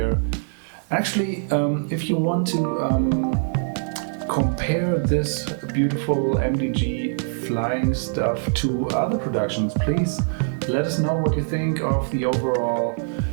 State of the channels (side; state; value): left; silent; digital silence